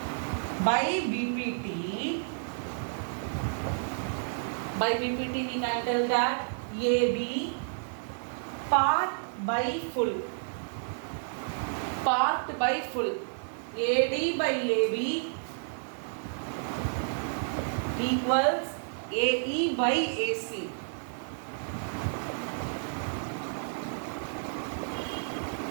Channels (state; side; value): silent; left; digital silence